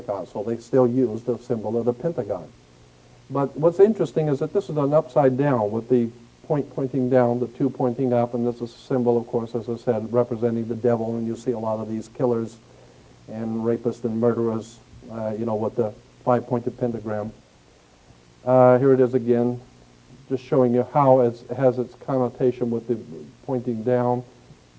So they still use the symbol of the pentagon. But what's interesting is that this is an upside down with the point pointing down, the 2 pointing up, and this is a symbol, of course, as I said, representing the devil. And you see a lot of these killers and rapists and murderers, with the five-pointed pentagram. Here it is again, just showing you how it has its connotation with the pointing down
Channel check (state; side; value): identical; both; correlation 1.00